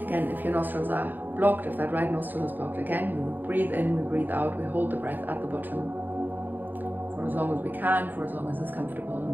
Again, if your nostrils are blocked, if that right nostril is blocked, again, we breathe in, we breathe out, we hold the breath at the bottom for as long as we can, for as long as it's comfortable, and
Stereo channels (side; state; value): left; late; 0.088 ms